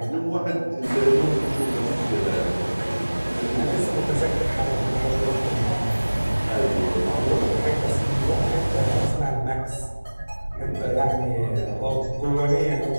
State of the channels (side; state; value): both; inverted; correlation -1.00